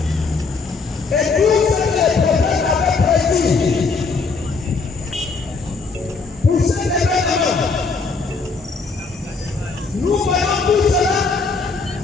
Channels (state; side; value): quieter; right; 4.5 dB